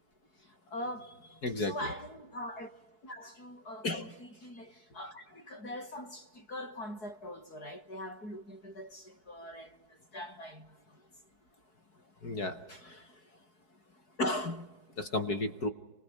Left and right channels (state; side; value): late; right; 4.7 ms